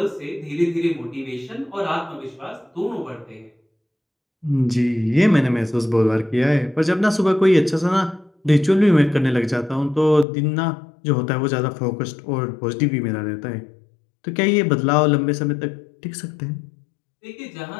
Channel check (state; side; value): drops out; right; at 10.2 s